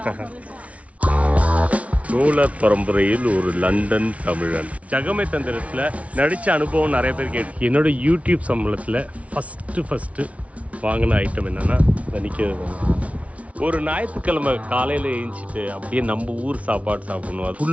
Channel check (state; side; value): late; left; 0.065 ms